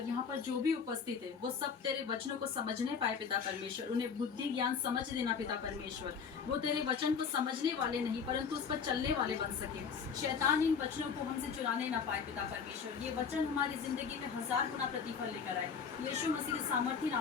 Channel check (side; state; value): right; quieter; 6.3 dB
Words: यहाँ पर जो भी उपस्थित है वो सब तेरे वचनों को समझने पाए पिता परमेश्वर। उन्हें बुद्धि ज्ञान समझ देना पिता परमेश्वर। वो तेरे वचन को समझने वाले नहीं परंतु उस पर चलने वाले बन सके। शैतान इन वचनों को हमसे चुराने ना पाए पिता परमेश्वर। ये वचन हमारी जिंदगी में 1000 गुना प्रतिफल लेकर आए। यीशु मसीह के सामर्थी